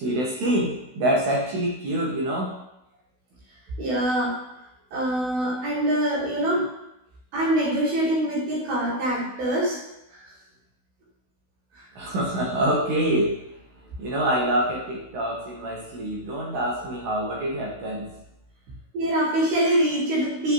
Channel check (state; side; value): late; left; 16 ms